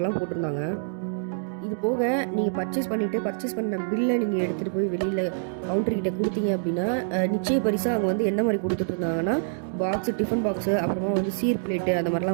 போட்டிருந்தாங்க. இது போக நீங்கள் பர்ச்சேஸ் பண்ண பில்லை நீங்கள் எடுத்துகிட்டு போய் வெளியில் கவுண்டர்கிட்ட கொடுத்தீங்க அப்படின்னா நிச்சய பரிசாக அவங்க வந்து என்ன மாதிரி கொடுத்துட்டு இருந்தாங்கன்னா பாக்ஸு, டிஃபன் பாக்ஸு, அப்புறமா வந்து சீர் பிளேட்டு அந்த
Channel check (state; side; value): silent; left; digital silence